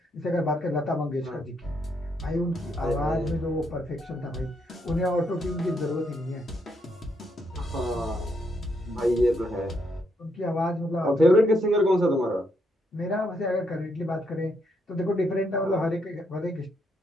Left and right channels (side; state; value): both; normal; correlation 0.76